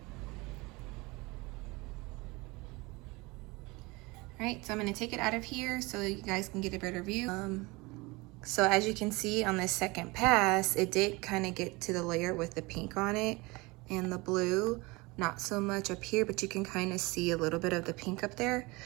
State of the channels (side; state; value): left; quieter; 24.2 dB